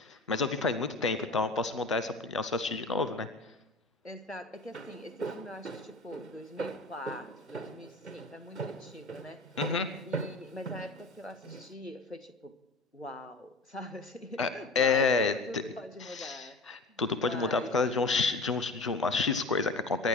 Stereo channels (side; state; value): right; quieter; 3.3 dB